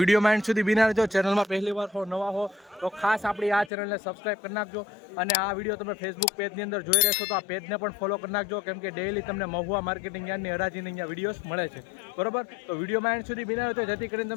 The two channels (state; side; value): drops out; right; at 3.7 s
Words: વિડીયોમાં એન્ડ સુધી બિના રહેજો. ચેનલમાં પહેલી વાર હો, નવા હો તો ખાસ આપણી આ ચેનલને સબસ્ક્રાઈબ કરી નાખજો. અને આ વિડીયો તમે ફેસબુક પેજની અંદર જોઈ રહેશો તો આ પેજને પણ ફોલો કરી નાખજો, કેમ કે ડેઈલી તમને મહુવા માર્કેટિંગ યાર્ડની હરાજીની અહીંયા વિડીયોઝ મળે છે. બરાબર, તો વિડીયોમાં એન્ડ સુધી બિના રહેજો, જેથી કરીને